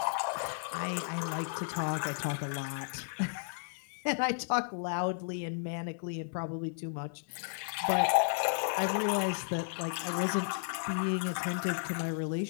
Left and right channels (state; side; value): silent; right; digital silence